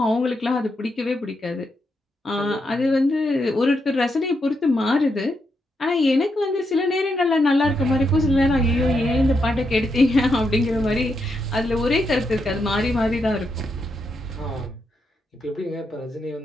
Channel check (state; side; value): normal; both; correlation 0.82